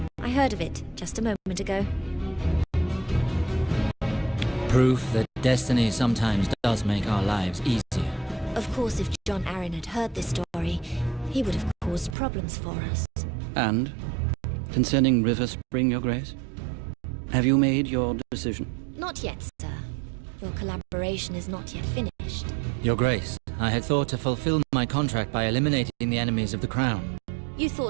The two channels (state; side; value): drops out; left; at 12.2 s